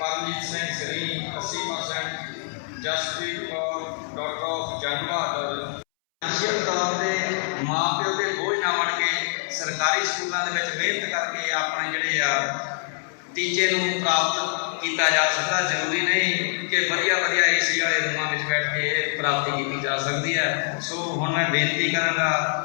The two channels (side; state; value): right; silent; 62 dB below the other